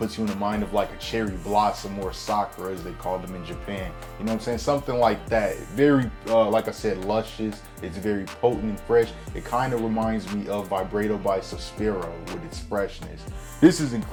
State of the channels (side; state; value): both; identical; correlation 1.00